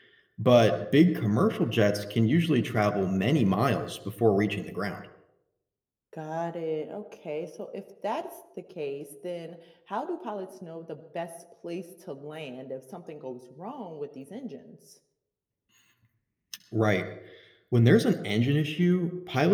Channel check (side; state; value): both; identical; correlation 1.00